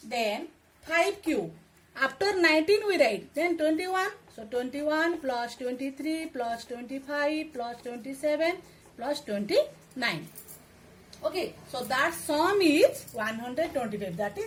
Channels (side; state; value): both; identical; correlation 1.00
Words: Then 5 cube. After 19 we write, then 21. So 21 plus 23 plus 25 plus 27 plus 29. Okay, so that sum is 125. That